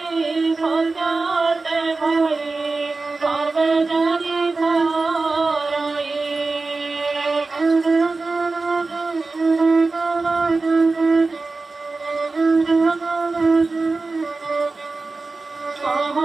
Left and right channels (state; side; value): quieter; left; 3.7 dB